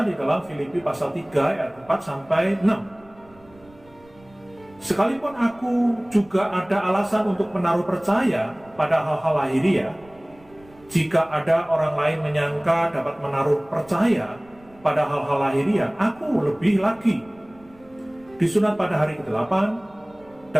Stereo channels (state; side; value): noise; right; rumble, 27 dB below the sound